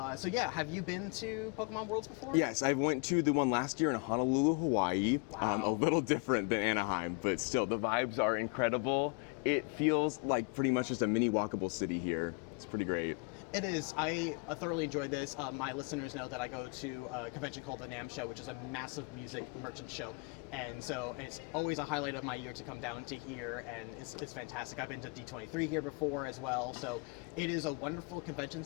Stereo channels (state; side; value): quieter; right; 33.1 dB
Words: so yeah, have you been to Pokemon Worlds before? Yes, I went to the one last year in Honolulu, Hawaii. Wow. A little different than Anaheim, but still, the vibes are incredible. It feels like pretty much just a mini walkable city here. It's pretty great. It is. I thoroughly enjoyed this. My listeners know that I go to a convention called the NAMM Show, which is a massive music merchant show. And so it's always a highlight of my year to come down to here, and it's fantastic. I've been to D23 here before as well. So it is a wonderful convention